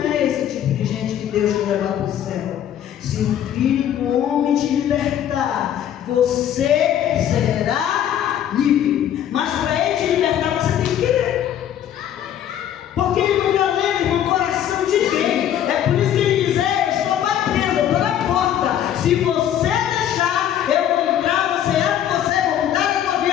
é esse tipo de gente que Deus quer levar para o céu. Se o Filho do Homem te libertar, você será livre. Mas para Ele te libertar, você tem que querer. Porque Ele não violenta, irmão, o coração de ninguém. É por isso que Ele diz: eu estou batendo, eu estou na porta. Se você deixar, eu vou entrar, vou mudar a tua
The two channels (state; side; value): quieter; right; 10.5 dB